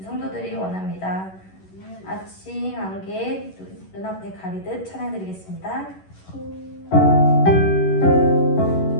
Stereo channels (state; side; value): late; right; 11 ms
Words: 성도들이 원합니다. 아침 안개 눈앞에 가리듯 찬양 드리겠습니다.